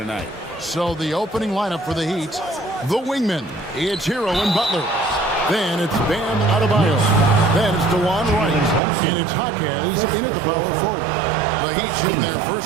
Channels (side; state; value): left; drops out; at 8.8 s